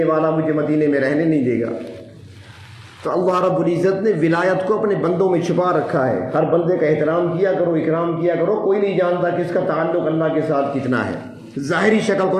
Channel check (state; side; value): identical; both; correlation 1.00